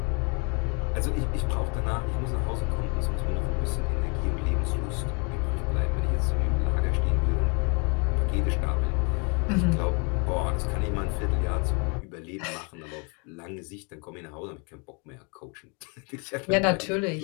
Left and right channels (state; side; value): quieter; right; 34.3 dB